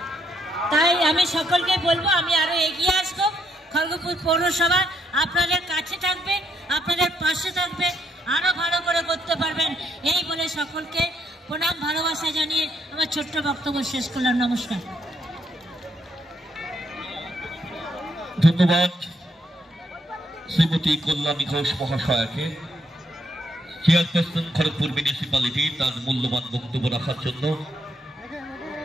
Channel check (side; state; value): both; normal; correlation 0.74